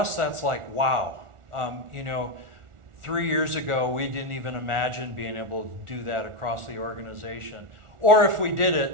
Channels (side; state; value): left; late; 1.4 ms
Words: that's like, wow. 3 years ago, we didn't even imagine being able to do that across the organization. Or if we did